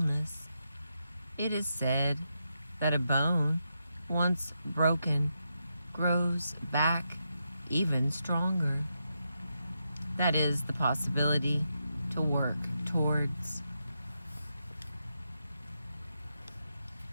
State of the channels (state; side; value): inverted; both; correlation -0.84